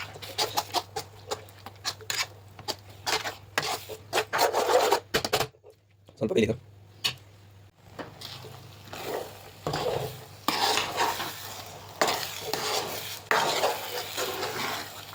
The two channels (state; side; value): identical; both; correlation 1.00